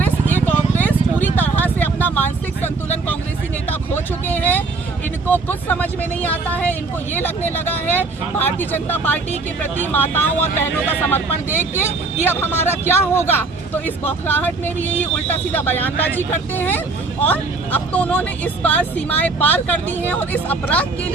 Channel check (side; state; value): left; quieter; 3.7 dB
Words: पूरी तरह से अपना मानसिक संतुलन कांग्रेसी नेता खो चुके हैं। इनको कुछ समझ में नहीं आता है। इनको ये लगने लगा है भारतीय जनता पार्टी के प्रति माताओं और बहनों का समर्पण देख के कि अब हमारा क्या होगा। तो इस बौखलाहट में भी यही उल्टा सीधा बयानबाजी करते हैं और अब तो उन्होंने इस बार सीमाएं पार कर दी हैं। और इस अपराध के